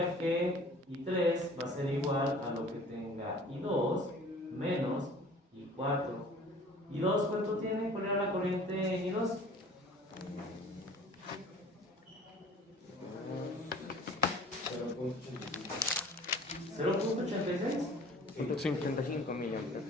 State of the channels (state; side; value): normal; both; correlation 0.48